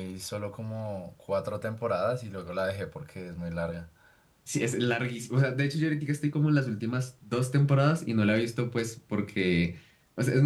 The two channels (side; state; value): both; identical; correlation 1.00